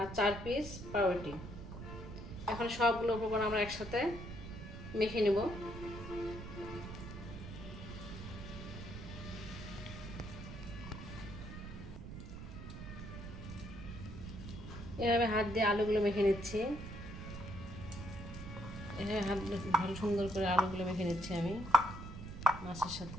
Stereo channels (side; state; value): right; noise; rumble, 10 dB below the sound